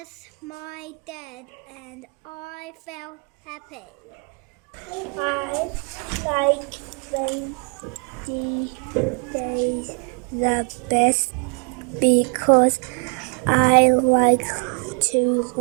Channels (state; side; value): quieter; left; 38.1 dB